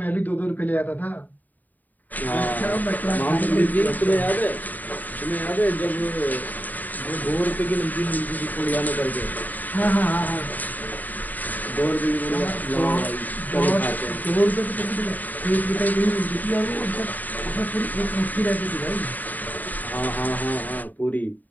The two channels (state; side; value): late; right; 0.084 ms